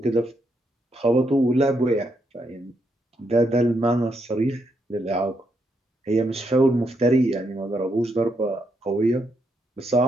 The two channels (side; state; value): both; normal; correlation 0.78